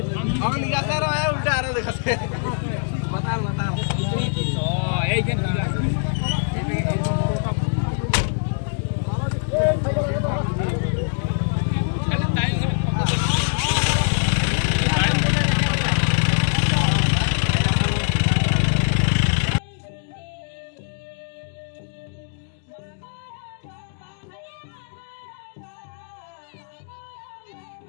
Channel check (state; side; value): silent; right; 63 dB below the other